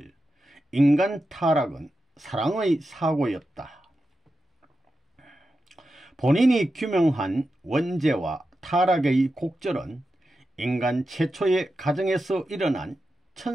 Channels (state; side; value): normal; both; correlation 0.90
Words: 인간 타락은 사랑의 사고였다. 본인이 규명한 원죄와 타락의 곡절은 인간 최초의 가정에서 일어난